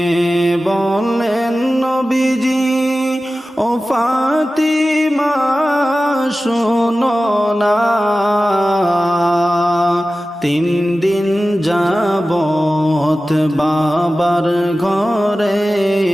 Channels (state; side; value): normal; both; correlation 0.95